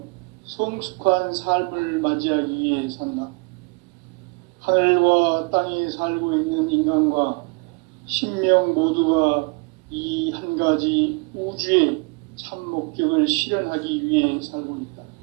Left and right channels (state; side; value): quieter; left; 32.3 dB